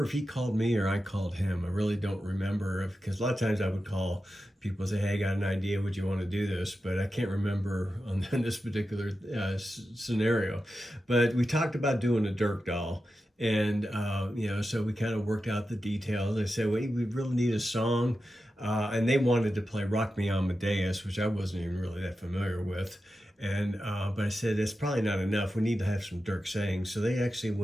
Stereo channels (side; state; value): both; normal; correlation 0.91